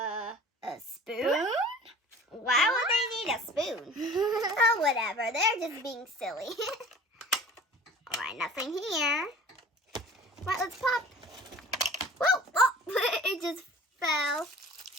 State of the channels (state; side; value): normal; both; correlation 0.44